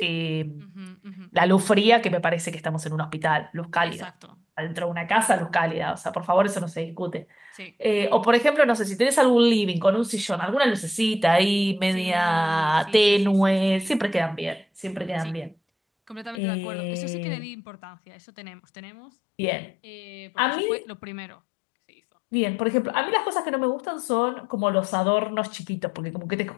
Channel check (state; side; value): drops out; right; at 16.4 s